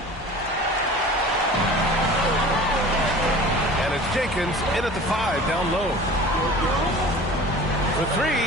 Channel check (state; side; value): normal; both; correlation 0.40